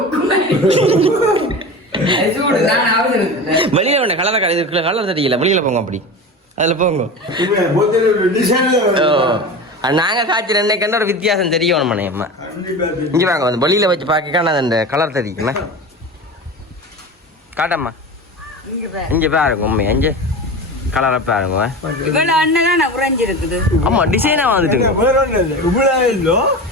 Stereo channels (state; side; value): normal; both; correlation 0.29